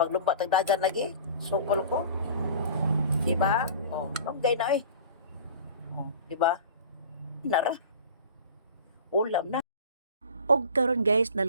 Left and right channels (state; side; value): inverted; both; correlation -0.40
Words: tag dagan lagi, sukol ko. Diba? Lunggay na diba? Nara. Ulam na. Og karon guys,